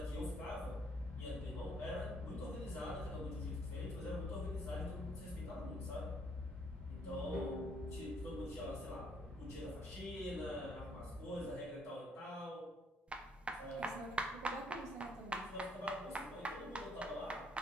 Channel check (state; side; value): normal; both; correlation 0.67